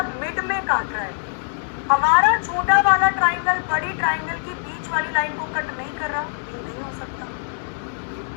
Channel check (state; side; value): silent; right; digital silence